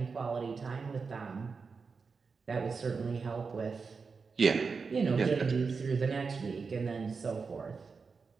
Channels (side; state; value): left; quieter; 5.0 dB